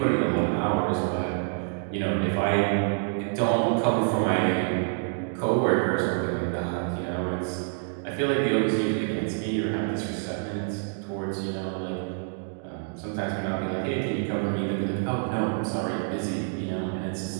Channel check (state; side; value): silent; left; 59 dB below the other